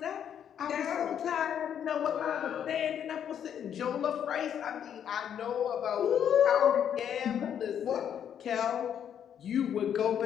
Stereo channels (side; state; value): right; quieter; 9.0 dB